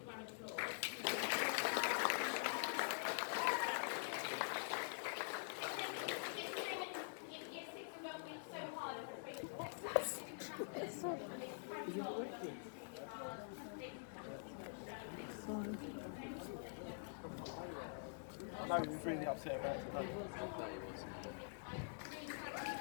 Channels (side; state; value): right; silent; digital silence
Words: round of applause. I know he was really upset about it today.